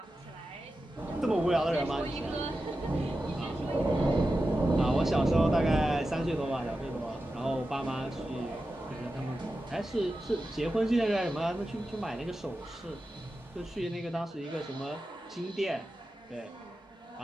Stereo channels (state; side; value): normal; both; correlation 0.92